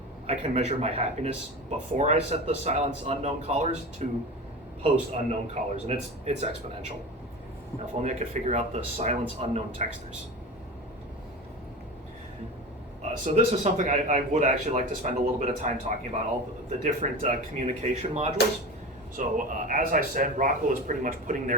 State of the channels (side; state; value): both; normal; correlation 0.30